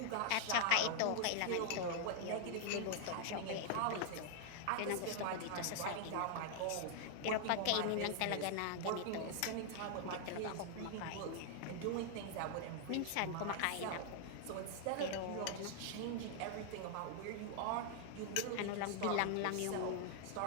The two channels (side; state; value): both; different; correlation 0.00